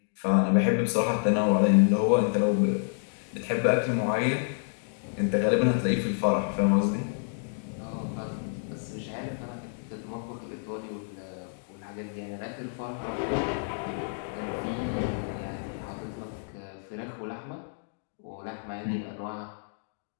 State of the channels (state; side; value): silent; right; digital silence